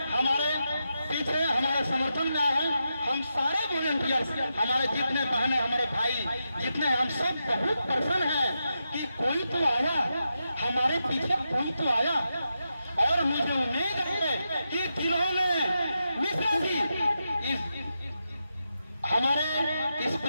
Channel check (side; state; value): both; inverted; correlation -0.87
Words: हमारे पीछे हमारे समर्थन में आए हैं। हम सारे वॉलंटियर्स, हमारे जितने बहनें, हमारे भाई जितने, हम सब बहुत प्रसन्न हैं कि कोई तो आया, हमारे पीछे कोई तो आया। और मुझे उम्मीद है कि जिन्होंने मिश्रा जी हमारे इस